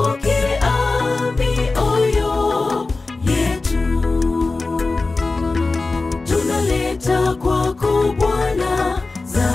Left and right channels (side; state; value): right; quieter; 3.6 dB